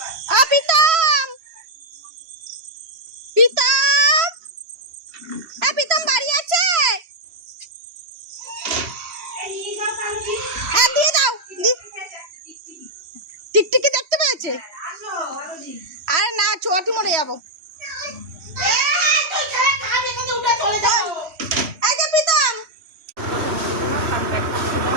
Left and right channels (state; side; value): late; left; 3.1 ms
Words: পিতাম, পিতাম, পিতাম বাড়ি আছে? পড়ে যাবো। এই যে প্রীতম,